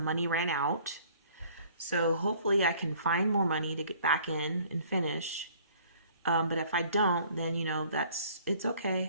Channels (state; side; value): inverted; both; correlation -0.55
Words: money ran out. So hopefully I can find more money to get back in and finish. But if I don't, then, it's